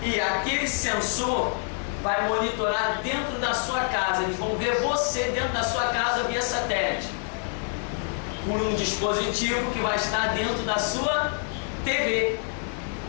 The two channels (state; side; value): silent; right; 56 dB below the other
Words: E aquele sensor vai monitorar dentro da sua casa, eles vão ver você dentro da sua casa via satélite, por um dispositivo que vai estar dentro da sua TV.